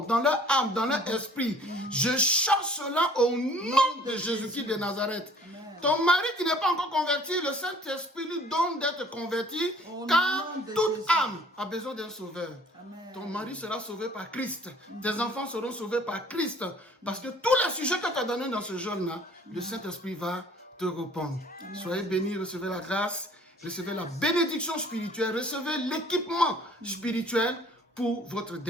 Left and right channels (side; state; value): both; normal; correlation 0.54